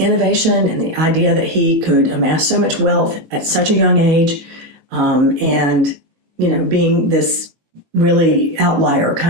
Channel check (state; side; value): late; left; 19 ms